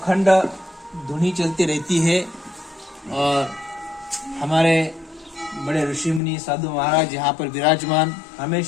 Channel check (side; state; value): right; drops out; at 6.2 s